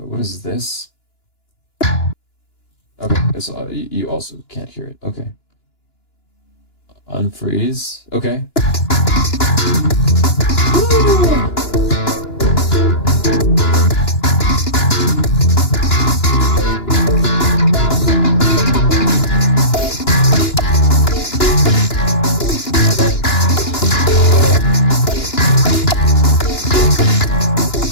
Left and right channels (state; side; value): late; right; 2.9 ms